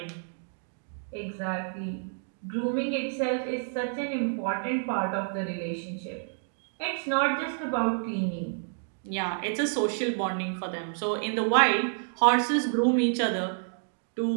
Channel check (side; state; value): left; silent; 58 dB below the other